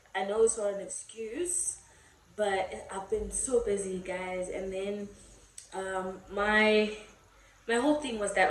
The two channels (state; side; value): identical; both; correlation 1.00